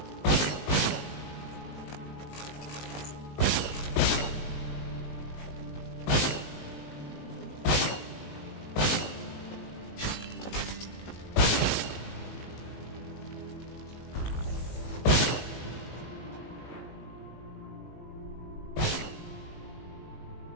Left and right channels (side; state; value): right; late; 19 ms